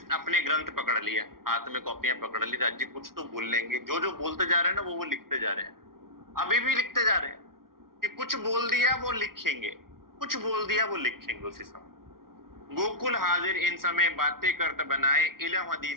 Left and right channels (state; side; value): late; left; 0.93 ms